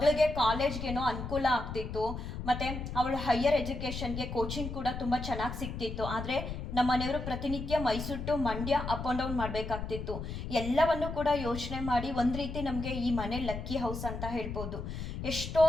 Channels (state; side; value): noise; left; rumble, 6 dB below the sound